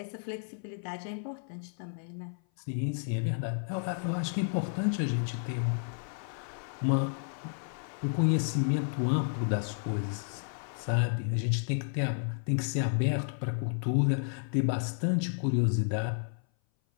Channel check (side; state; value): right; silent; 57 dB below the other